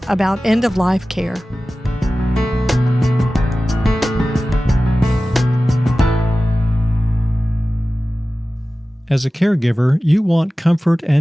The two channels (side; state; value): both; normal; correlation 0.96